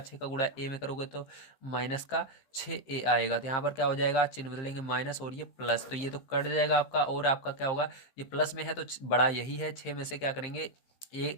का गुणा ए में करोगे तो माइनस का 6a आएगा, तो यहाँ पर क्या हो जाएगा, चिन्ह बदलेंगे माइनस और ये प्लस, तो ये तो कट जाएगा आपका और आपका क्या होगा, ये प्लस में है तो बड़ा यही है, 6 में से क्या करेंगे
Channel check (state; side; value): late; right; 15 ms